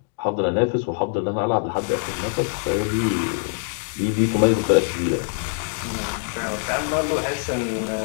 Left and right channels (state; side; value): silent; right; 63 dB below the other